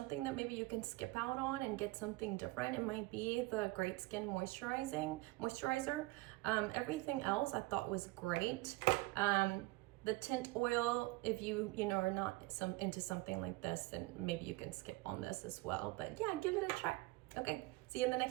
that maybe you can skip out on and get something different, it might be the Great Skin moisturizer. Everything else I thought was great. The tint oil, if you know, are not into something like this, then maybe you can skip on this as well. But yeah, give it a try. Okay, see you in the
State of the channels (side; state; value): left; quieter; 21.8 dB